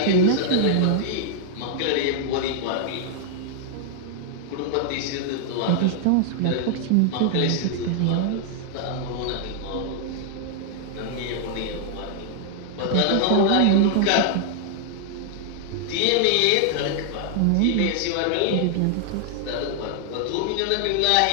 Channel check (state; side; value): different; both; correlation 0.00